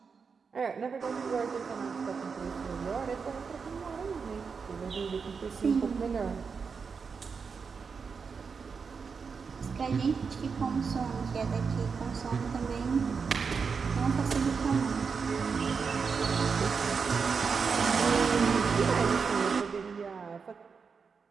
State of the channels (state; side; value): quieter; left; 5.5 dB